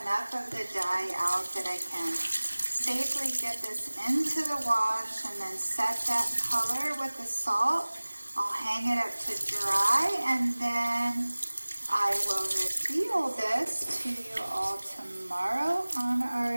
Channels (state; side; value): inverted; both; correlation -1.00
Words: enough of the dye out that I can safely get this into the wash and then set that color with the salt. I'll hang it up to dry, and then I will reveal this to you all tomorrow on